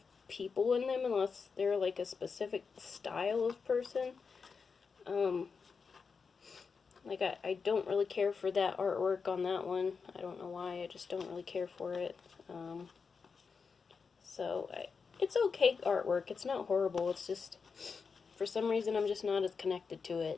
people in them unless they're like a specific style of person. Like I don't really care for that artwork on that one. I don't know why, I just don't really care for it. It's okay artwork, it's not horrible, it's just, for some reason I'm just not as connected to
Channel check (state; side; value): quieter; right; 5.3 dB